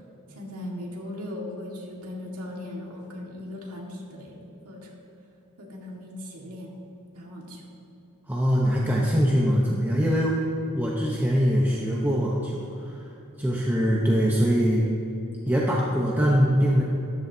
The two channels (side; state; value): both; normal; correlation 0.86